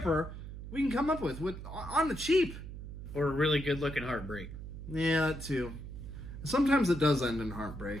we can come up with on the cheap. Or a really good looking heartbreak. Yeah, that too. Sometimes it does end in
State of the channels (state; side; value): noise; right; hum, 10 dB below the sound